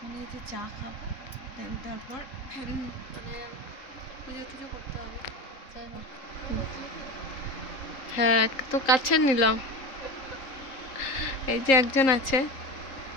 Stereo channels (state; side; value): late; right; 3.8 ms